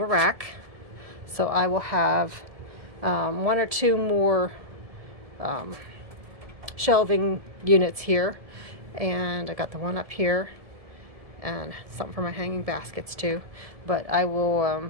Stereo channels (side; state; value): left; late; 1.7 ms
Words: a rack. So I will have one or two more shelving units here, and I got the one up here and something for my hanging baskets too, but I will